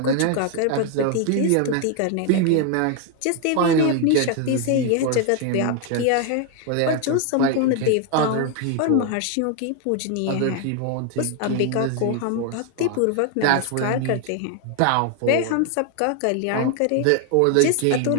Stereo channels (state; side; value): different; both; correlation 0.01